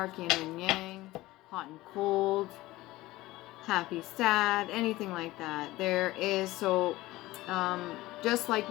yin and yang, hot and cold, happy, sad, anything like that. There is, so just like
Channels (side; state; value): right; quieter; 18.1 dB